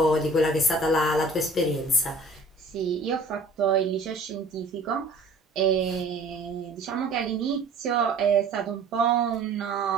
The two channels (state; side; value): quieter; left; 3.1 dB